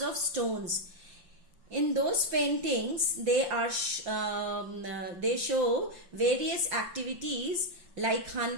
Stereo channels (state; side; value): late; left; 5.8 ms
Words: of stones. In those paintings, they show various activities like